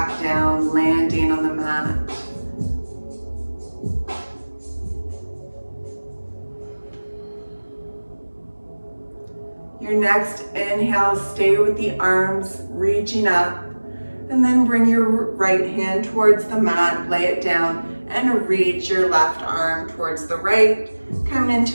down, landing on the mat. Your next inhale, stay with the arms reaching up, and then bring your right hand towards the mat, lay it down, and reach your left arm towards the right, coming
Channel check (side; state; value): both; inverted; correlation -1.00